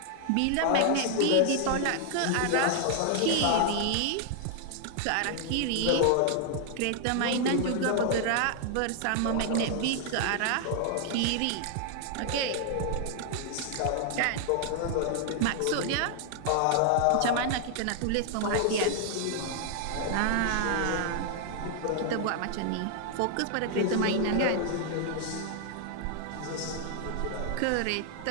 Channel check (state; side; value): different; both; correlation 0.00